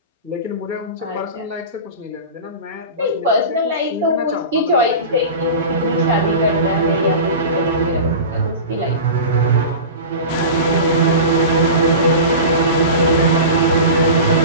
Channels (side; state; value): both; inverted; correlation -0.31